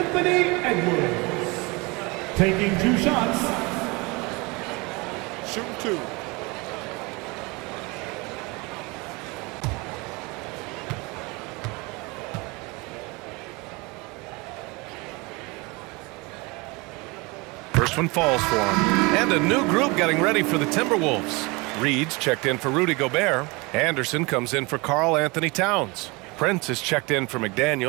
Edwards. Taking 2 shots. Shooting 2. First one falls for him. And a new group getting ready for the Timberwolves. Reed's checked in for Rudy Gobert. Anderson comes in for Karl Anthony Towns. Prince is checked in for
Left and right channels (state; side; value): quieter; left; 26.1 dB